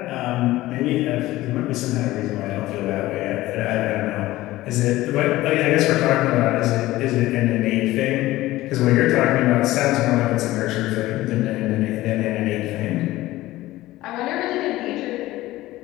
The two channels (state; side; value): quieter; right; 17.0 dB